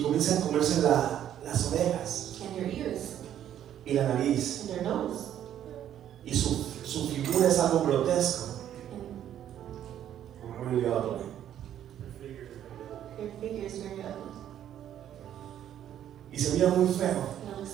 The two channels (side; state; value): left; quieter; 10.7 dB